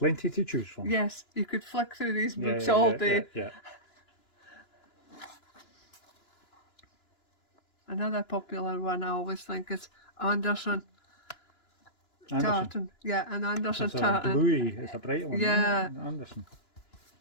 to choose from. yes, you could flick through these Yeah, books yeah, all yeah, day. Yeah. Another popular one I always think is Anderson tartan. Yeah, an Anderson It's a tartan. bluey, it's a bright one. Yeah. isn't it? Anderson.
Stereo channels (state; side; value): late; right; 2.9 ms